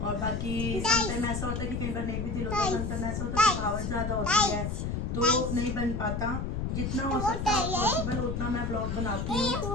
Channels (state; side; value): noise; left; rumble, 2 dB below the sound